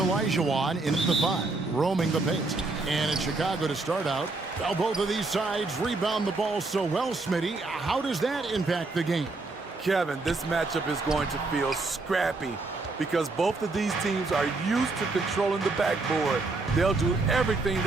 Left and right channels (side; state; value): left; quieter; 3.5 dB